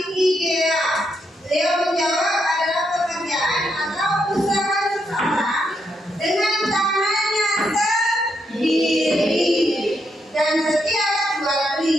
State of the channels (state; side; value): normal; both; correlation 0.80